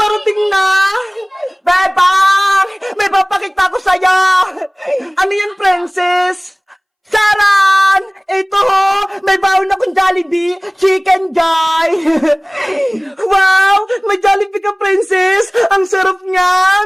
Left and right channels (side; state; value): both; identical; correlation 1.00